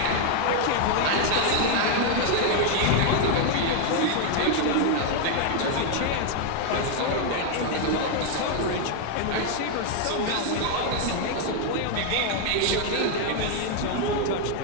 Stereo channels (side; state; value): both; different; correlation 0.00